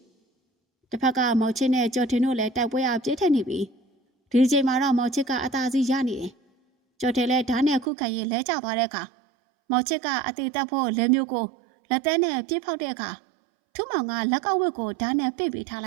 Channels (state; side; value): drops out; left; at 7.9 s